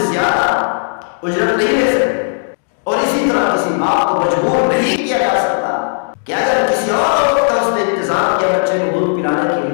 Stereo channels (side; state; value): right; silent; digital silence